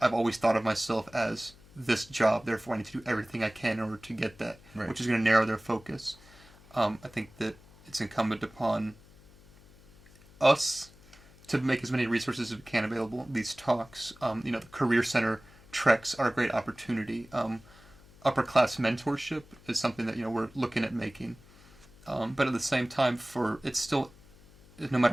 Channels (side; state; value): left; noise; hum, 24 dB below the sound